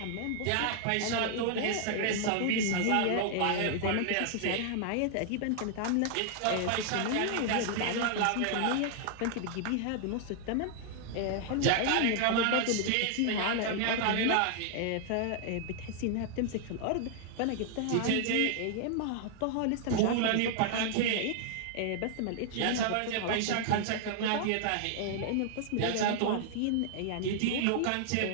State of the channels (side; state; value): both; different; correlation 0.00